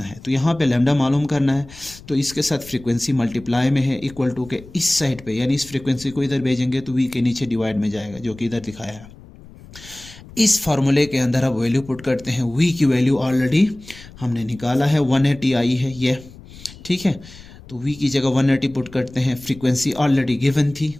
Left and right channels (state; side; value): noise; left; rumble, 19 dB below the sound